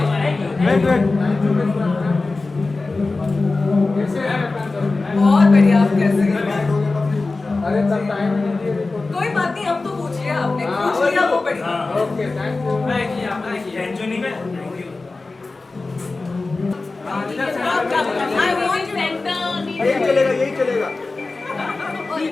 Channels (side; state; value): right; quieter; 3.5 dB